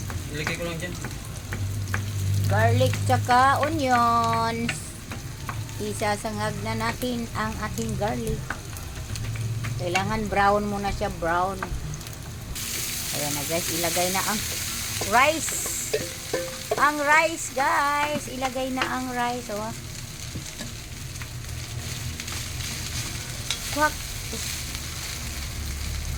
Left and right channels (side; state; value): both; identical; correlation 1.00